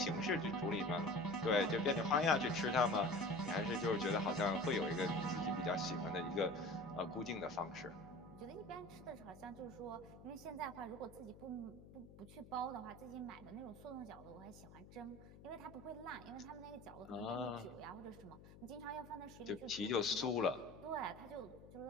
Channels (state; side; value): noise; left; hum, 18 dB below the sound